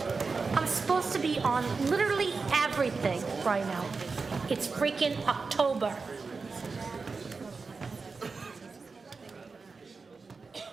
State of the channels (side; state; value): left; quieter; 4.5 dB